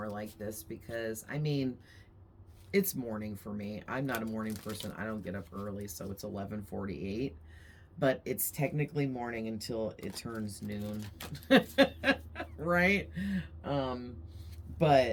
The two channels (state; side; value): identical; both; correlation 1.00